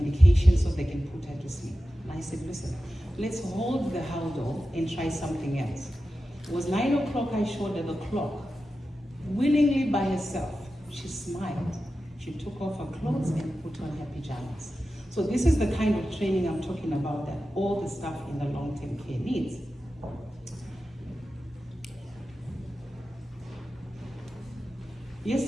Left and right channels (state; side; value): normal; both; correlation 0.93